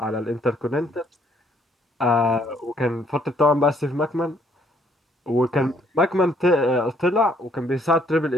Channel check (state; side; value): normal; both; correlation 0.66